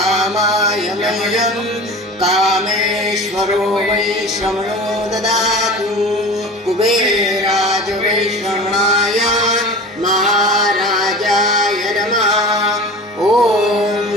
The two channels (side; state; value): both; normal; correlation 0.36